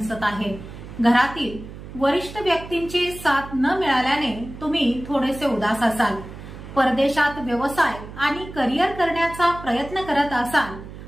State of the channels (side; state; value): right; noise; hum, 13 dB below the sound